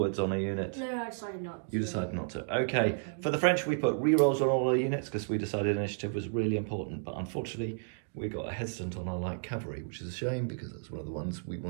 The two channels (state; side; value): silent; left; digital silence